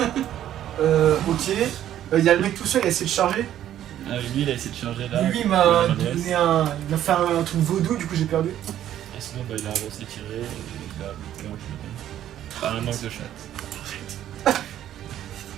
Ok. Il y a le mec tout seul, il a essayé de charger. Lui il a essayé de charger là. Lui, il le m'a Lehman Russ. donné un. Il m'a fait un truc vaudou, du coup j'ai perdu. Et sinon, bah, il a avancé tiré et il a loupé en général. Pas un manque de chatte.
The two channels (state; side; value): quieter; left; 11.6 dB